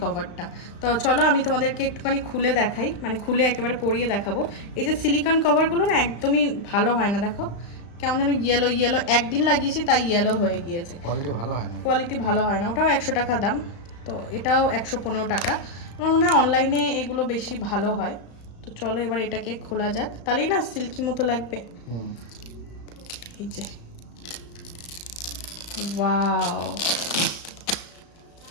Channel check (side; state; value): right; late; 35 ms